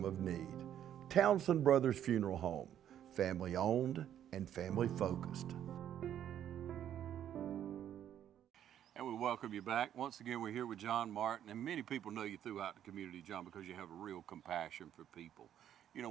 of need. Townsend Brothers Funeral Home, family owned and family focused. And we welcome you back. Once again, we're here with John Martin, and many people know you throughout the community, John, because you have a real compassion for people. You know,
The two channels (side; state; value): left; quieter; 10.4 dB